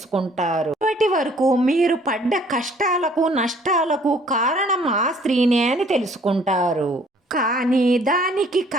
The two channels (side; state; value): both; normal; correlation 0.58